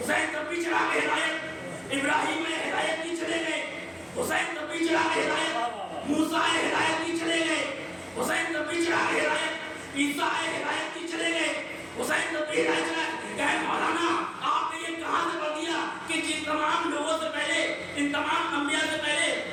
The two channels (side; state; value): both; identical; correlation 1.00